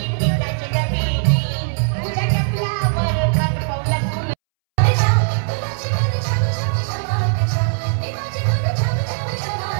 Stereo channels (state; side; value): silent; left; 66 dB below the other